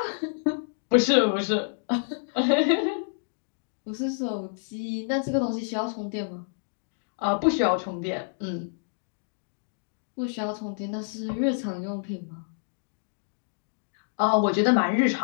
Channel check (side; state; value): right; silent; digital silence